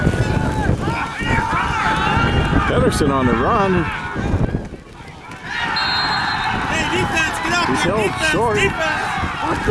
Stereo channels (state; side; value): identical; both; correlation 1.00